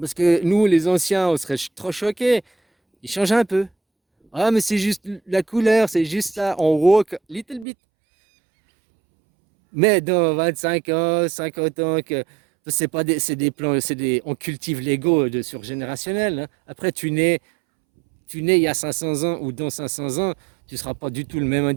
que nous, les anciens, on serait trop choqués. Il change un peu. Ah, mais c'est juste la couleur, c'est juste ça. On woke, little bit. Mais dans 25 ans, 50 ans, que c'est pas c'est des plans, on cultive l'ego de surgénérationnel, hein. Après, tu nais il y a 500 ans ou dans 500 ans, tu ne seras pas du tout le même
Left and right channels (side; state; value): left; drops out; at 7.7 s